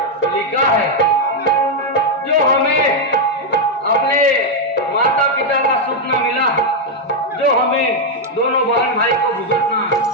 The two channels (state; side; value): normal; both; correlation 0.01